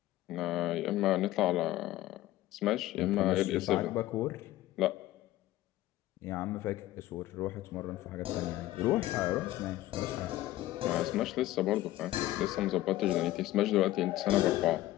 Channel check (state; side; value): quieter; right; 15.7 dB